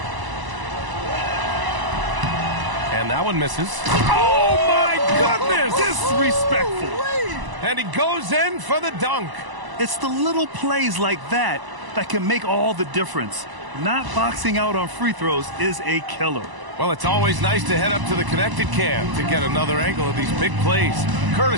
And that one misses. Oh, my goodness! Disrespectful. And he goes in for the dunk. It's the little plays like that that can make all the difference. Not boxing out on free throws is a killer. Well, it's always nice to head up to the connected cam to get another angle of these big plays,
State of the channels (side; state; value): left; late; 1.0 ms